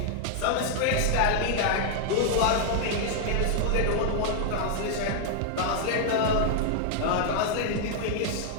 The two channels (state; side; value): different; both; correlation 0.00